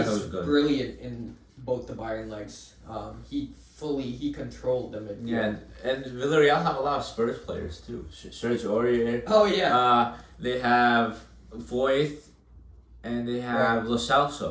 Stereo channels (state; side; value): identical; both; correlation 1.00